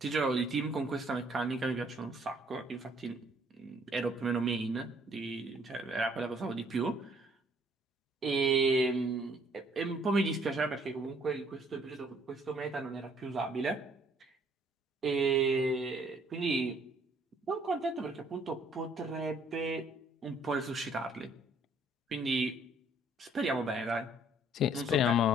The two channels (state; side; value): normal; both; correlation 0.62